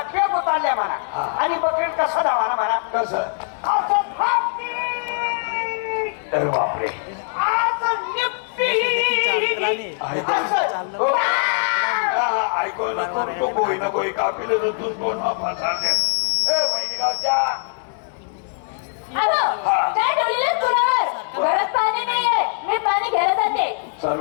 उतारल्या म्हणा आणि बकरी कसं धावा म्हणा कसं असं थांबती. तर बापरे असं निपटी. असं. हो. ऐकू नको तो गोई नको कापील तूच कोण सांगते वहिनी गावच्या काय ठेवलेलं तुलावर घरात पाणी नाहीये मी पाणी घ्यायला जाते.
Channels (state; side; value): silent; right; 64 dB below the other